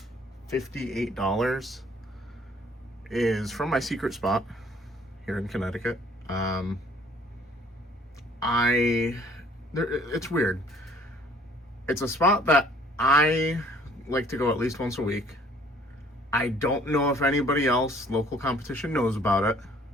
$58 is from my secret spot here in Connecticut. It's weird. It's a spot that I like to go at least once a week. I don't know if anybody else, local competition, knows about it.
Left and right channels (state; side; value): normal; both; correlation 0.58